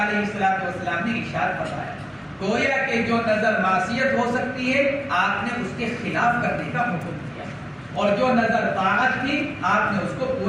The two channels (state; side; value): identical; both; correlation 1.00